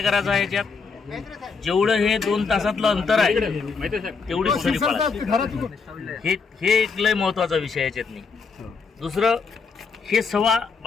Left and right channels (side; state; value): right; quieter; 5.0 dB